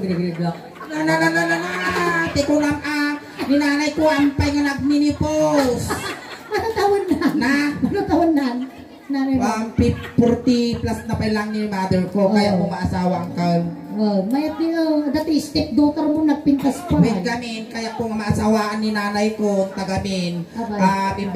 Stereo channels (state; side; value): identical; both; correlation 1.00